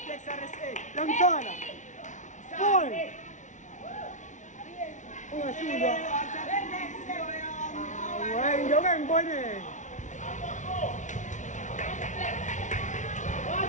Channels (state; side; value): late; right; 0.36 ms